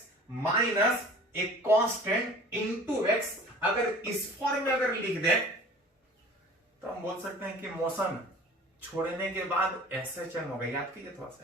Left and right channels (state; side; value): normal; both; correlation 0.45